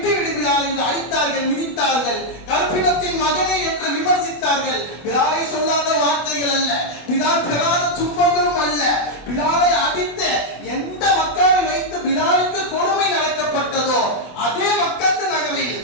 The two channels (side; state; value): right; late; 24 ms